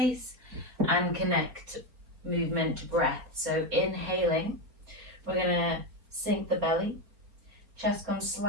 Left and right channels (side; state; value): left; late; 4.5 ms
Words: and connect movement to breath. So inhaling, we're gonna sink the belly. Chest comes